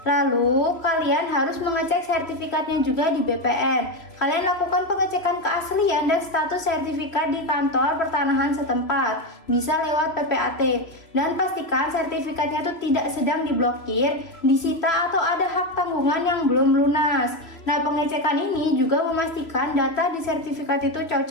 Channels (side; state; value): right; late; 3.0 ms